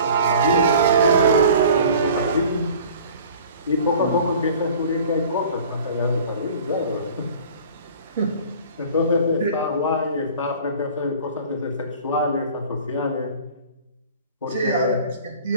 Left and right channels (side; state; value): both; inverted; correlation -0.46